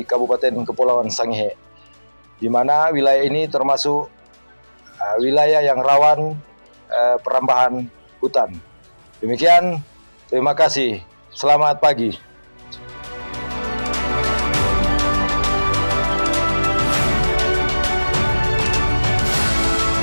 Kabupaten Kepulauan Sangihe, di mana wilayah ini termasuk wilayah yang rawan perambahan hutan. Demikian, terima kasih. Selamat pagi.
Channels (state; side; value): inverted; both; correlation -1.00